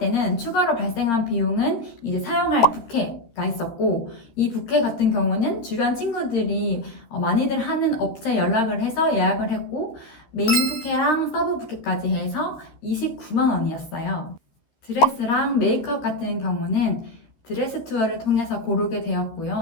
추가로 발생한 비용은 이제 사용할 부케가 있었고 이 부케 같은 경우는 주변 친구들이 많이들 하는 업체 연락을 해서 예약을 했고 메인 부케랑 서브 부케까지 해서 29만 원이었어요. 드레스랑 메이크업 같은 경우는 드레스 투어를 통해서 고르게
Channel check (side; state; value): right; late; 13 ms